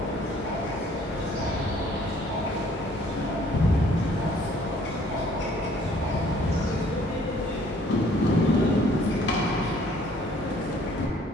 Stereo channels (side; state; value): both; normal; correlation 0.59